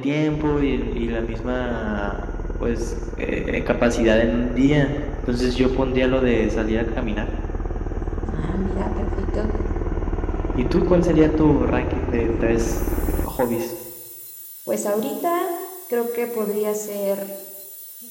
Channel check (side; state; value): both; identical; correlation 1.00